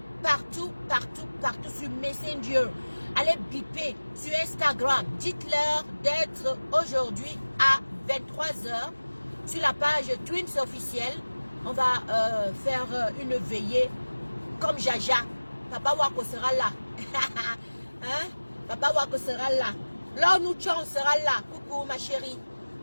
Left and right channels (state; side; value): inverted; both; correlation -1.00